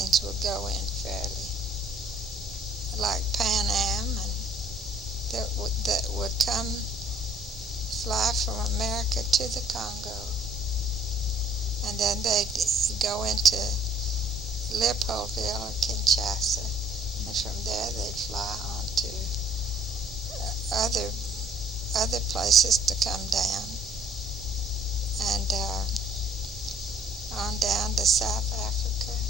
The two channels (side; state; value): both; normal; correlation 0.57